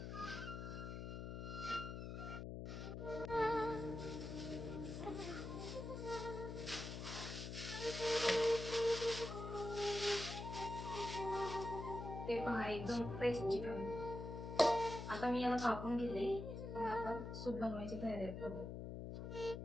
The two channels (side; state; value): left; noise; hum, 6 dB below the sound